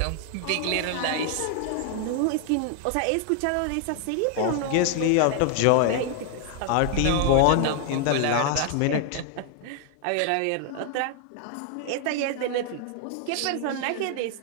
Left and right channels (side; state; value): both; different; correlation 0.00